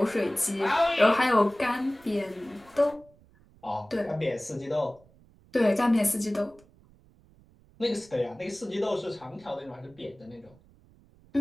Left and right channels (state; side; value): noise; right; rumble, 28 dB below the sound